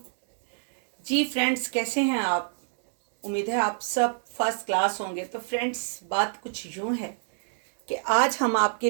जी फ्रेंड्स, कैसे हैं आप? उम्मीद है आप सब फर्स्ट क्लास होंगे। तो फ्रेंड्स, बात कुछ यूँ है कि आज हम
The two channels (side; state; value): left; silent; digital silence